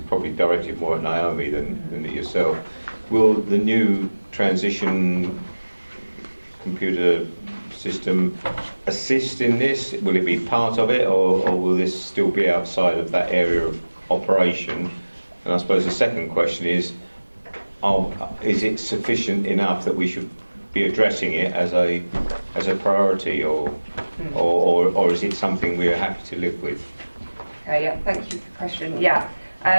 probably directed more at Naomi than at yourself, will the new transition computer system assist in this? Will it be part of it, or will this still be outside of that area of operation? And I suppose the second question is it sufficient enough that we should be addressing it as a priority, or is it something we are happy to live with? Okay, yeah, thank you for the question. Yeah,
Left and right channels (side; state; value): both; inverted; correlation -1.00